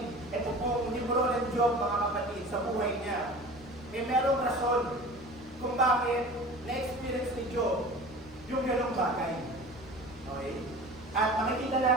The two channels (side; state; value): left; noise; rumble, 23 dB below the sound